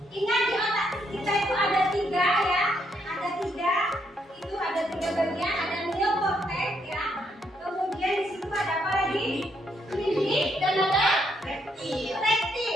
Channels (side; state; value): both; normal; correlation 0.75